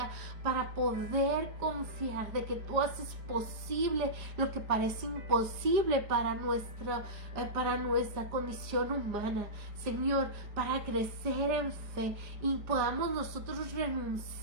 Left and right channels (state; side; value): late; left; 4.9 ms